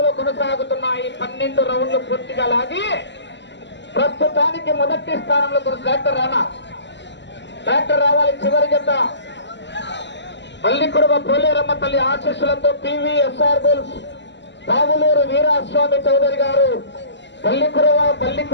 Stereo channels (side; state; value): right; late; 0.52 ms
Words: కొనసాగుతున్నాయి. 12 రౌండ్లు పూర్తిగా లాగి ప్రస్తుతానికి మొదటి స్థానంలో ట్రాక్టర్ రావాలి. చివరి జత పల్లికుడుమ పోలేరమ్మ తల్లి ఆశీస్సులతో పివిఎస్ఆర్ బుల్స్ పావులూరు వీరాస్వామి చౌదరి గారు